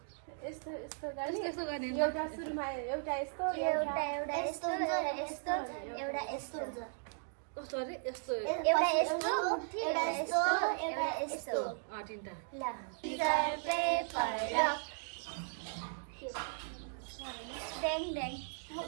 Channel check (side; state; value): left; silent; digital silence